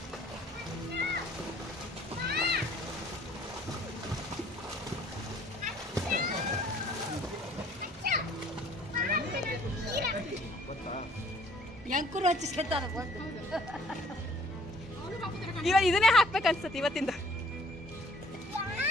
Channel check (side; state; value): both; normal; correlation 0.57